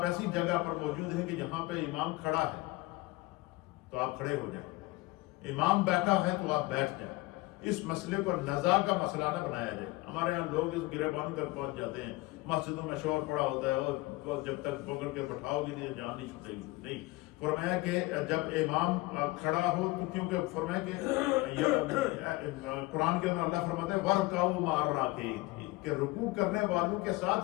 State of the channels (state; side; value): quieter; right; 21.5 dB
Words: ایسی جگہ پر موجود ہیں کہ جہاں پہ امام کھڑا ہے تو آپ کھڑے ہو جائیں، امام بیٹھا ہے تو آپ بیٹھ جائیں۔ اس مسئلے کو نزاع کا مسئلہ نہ بنایا جائے۔ ہمارے یہاں لوگ اس گریبان کر پہنچ جاتے ہیں، مسجدوں میں شور پڑا ہوتا ہے اور جب تک پکڑ کے بٹھاؤ گے نہیں جان نہیں چھوٹے گی۔ نہیں، فرمایا کہ جب امام کھڑا ہو تو کیونکہ فرمایا کہ قرآن کے اندر اللہ فرماتا ہے وَرْكَعُوا مَعَ الرَّاكِعِينَ، کہ رکوع کرنے والوں کے